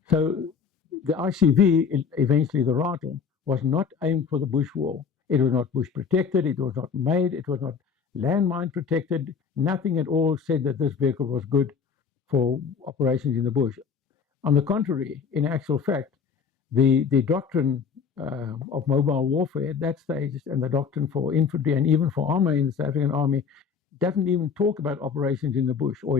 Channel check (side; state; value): right; quieter; 6.2 dB